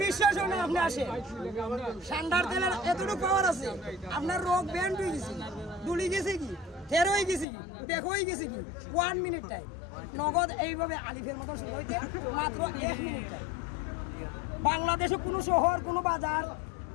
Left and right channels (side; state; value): right; drops out; at 7.5 s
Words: বিশ্বাস হয় না আপনি আসেন সান্ডার তেলের এতটুকু পাওয়ার আছে আপনার রোগ ব্যান্ড হয়ে গেছে দুলি গেছে কি ফের হয়ে গেছে কি দেখো হয়ে গেছে কি 1 মিনিট টাইম নগদ এইভাবে আলিফের মতো শুরু হইতে মাত্র 1 মিনিট টাইম বাংলাদেশে কোনো শহর কোনো বাজার